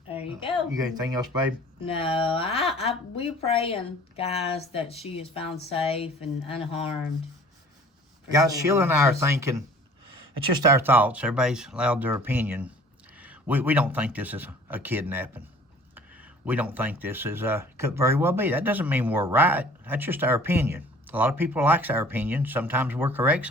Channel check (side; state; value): both; normal; correlation 0.50